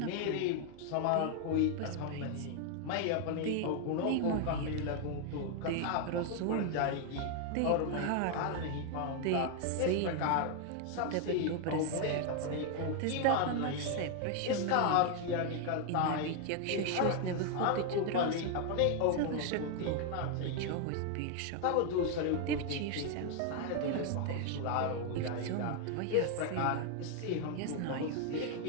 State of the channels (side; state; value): both; different; correlation 0.00